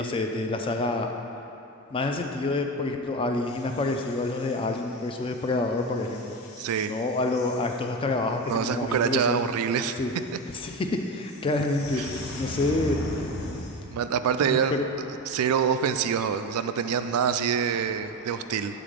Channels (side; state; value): both; normal; correlation 0.20